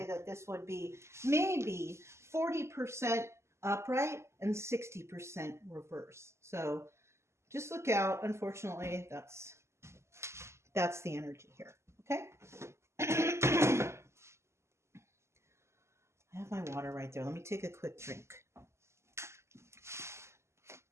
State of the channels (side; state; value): left; late; 0.13 ms